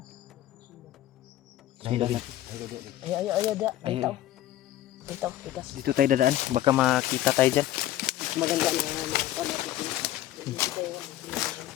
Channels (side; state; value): right; quieter; 13.8 dB